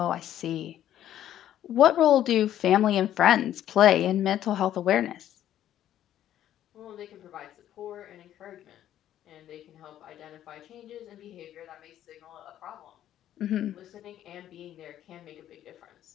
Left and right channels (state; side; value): quieter; right; 11.7 dB